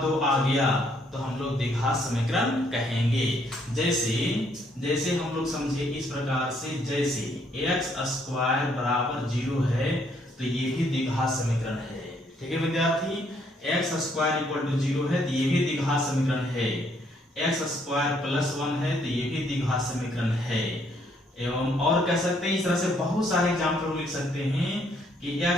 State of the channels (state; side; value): normal; both; correlation 0.69